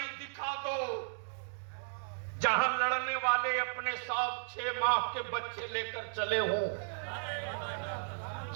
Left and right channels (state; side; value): silent; left; digital silence